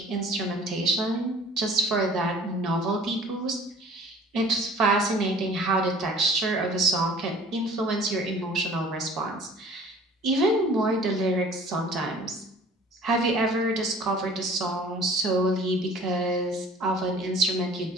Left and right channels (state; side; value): normal; both; correlation 0.49